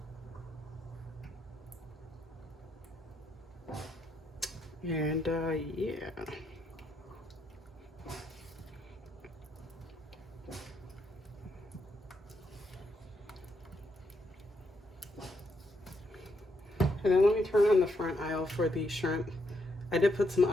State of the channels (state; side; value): normal; both; correlation 0.78